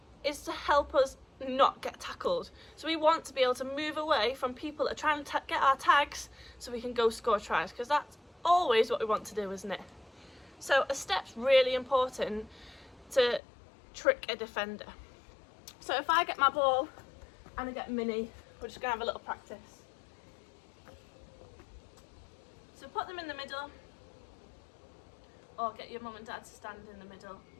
is to help us not get tackled. So we want to be able to move away from people that are trying to get our tags so we can go score tries, because that's always what we want to do, isn't it? So a step's really important to trick a defender. So if I get my ball and I get Minnie, we're just going to have a little practice. So put them in the middle, or get your mum and dad to stand in the middle.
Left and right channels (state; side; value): drops out; right; at 13.4 s